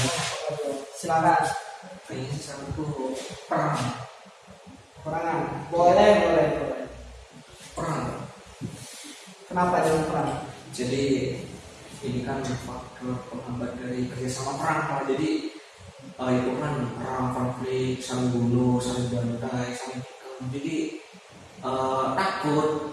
Silakan. kayaknya satu tuh perang. Perangan. Boleh. Perang. Kenapa jangan perang? Jadi ini kan faktor penghambat dari kerjasama perang Pak. Jadi itu kan perang, konflik, saling bunuh, saling bantai, saling tikam. Jadi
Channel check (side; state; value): both; identical; correlation 1.00